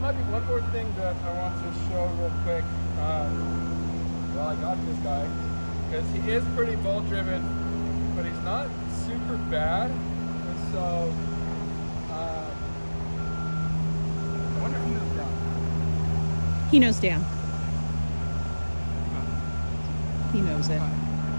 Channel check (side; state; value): both; inverted; correlation -1.00